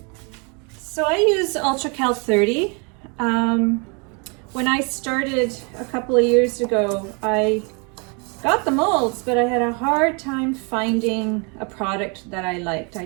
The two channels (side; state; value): left; quieter; 33.7 dB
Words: So I use Ultra Cal 30. When I started a couple of years ago, I got the molds, but I had a hard time finding a product that I liked. I